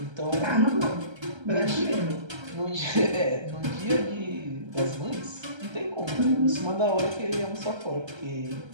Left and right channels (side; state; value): left; late; 1.3 ms